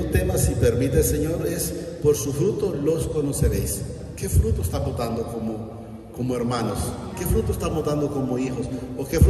tema, si permite el Señor, es: por su fruto los conoceréis. ¿Qué fruto estamos dando como hermanos? ¿Qué fruto estamos dando como hijos? ¿O qué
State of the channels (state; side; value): identical; both; correlation 1.00